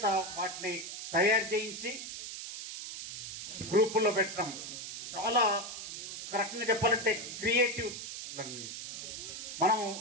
వాటిని తయారు చేయించి గ్రూపుల్లో పెట్టడం చాలా కరెక్ట్గా చెప్పాలంటే క్రియేటివ్. మనం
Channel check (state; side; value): noise; right; hiss, 8 dB below the sound